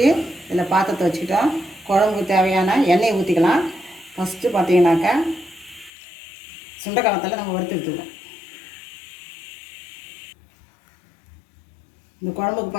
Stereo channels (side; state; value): right; drops out; at 5.9 s